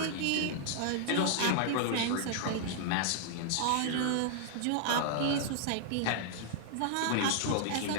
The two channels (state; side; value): different; both; correlation -0.01